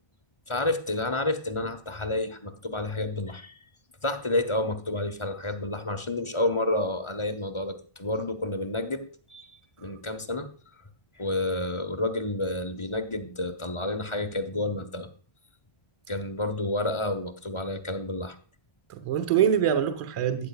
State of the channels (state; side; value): late; right; 1.4 ms